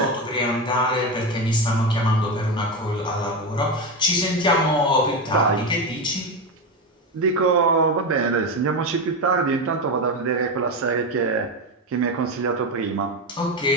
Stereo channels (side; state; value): both; normal; correlation 0.15